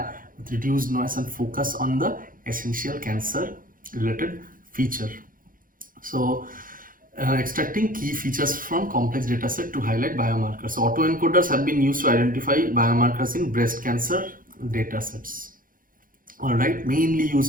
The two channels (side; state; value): left; late; 0.40 ms